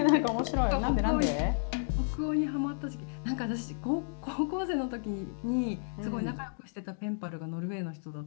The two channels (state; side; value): silent; right; digital silence